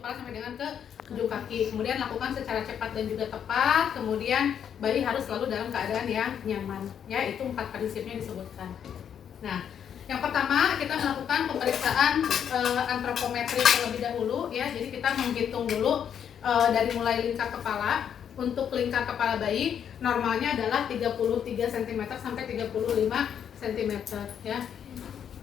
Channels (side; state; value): right; quieter; 8.5 dB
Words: sampai dengan ke ujung kaki. Kemudian lakukan secara cepat dan juga tepat. Kemudian bayi harus selalu dalam keadaan yang nyaman. Ya, itu 4 prinsipnya disebutkan. Nah, yang pertama kita melakukan pemeriksaan antropometri terlebih dahulu ya. Jadi kita menghitung dulu dari mulai lingkar kepala. Untuk lingkar kepala bayi normalnya adalah 33 cm sampai 35 cm ya.